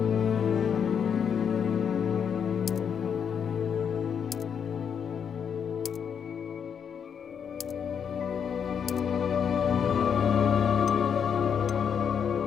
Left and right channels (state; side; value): quieter; right; 7.5 dB